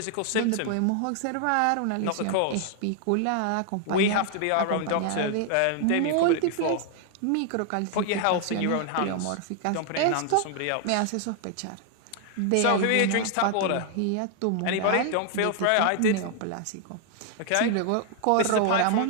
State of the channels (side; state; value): both; different; correlation 0.00